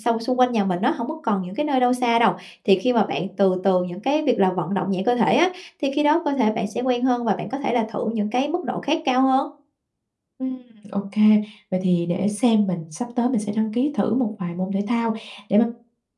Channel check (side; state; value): both; identical; correlation 1.00